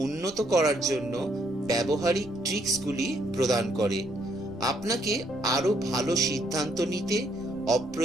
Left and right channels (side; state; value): right; noise; rumble, 22 dB below the sound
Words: উন্নত করার জন্য ব্যবহারিক ট্রিক্সগুলি প্রদান করে। আপনাকে আরো ভালো সিদ্ধান্ত নিতে,